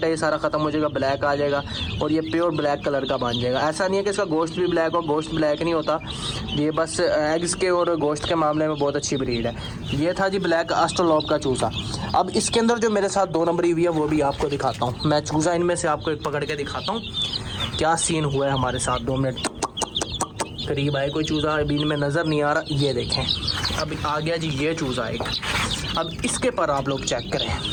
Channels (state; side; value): identical; both; correlation 1.00